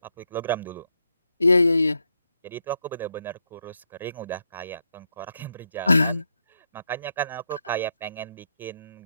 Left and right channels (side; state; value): both; inverted; correlation -0.80